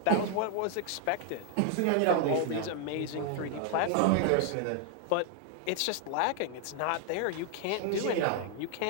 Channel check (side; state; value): both; different; correlation 0.00